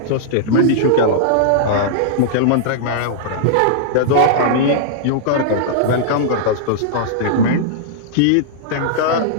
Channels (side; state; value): both; different; correlation -0.02